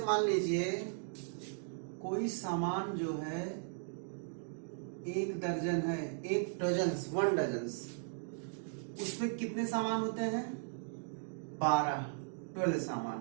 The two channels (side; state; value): left; silent; digital silence